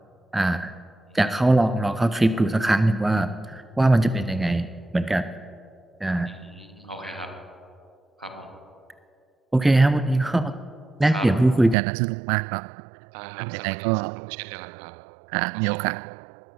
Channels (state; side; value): drops out; left; at 11.8 s